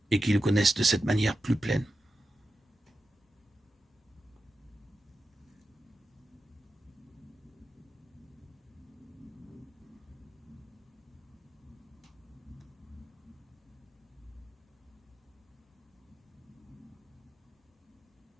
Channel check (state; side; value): normal; both; correlation 0.91